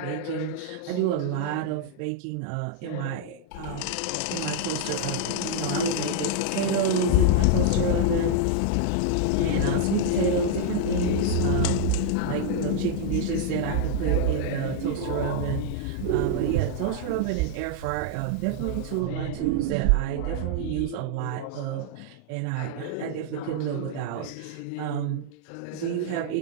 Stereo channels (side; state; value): both; different; correlation -0.01